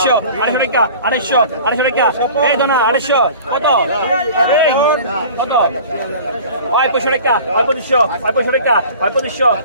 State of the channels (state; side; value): inverted; both; correlation -0.42